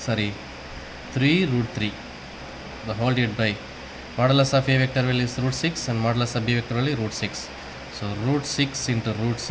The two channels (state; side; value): identical; both; correlation 1.00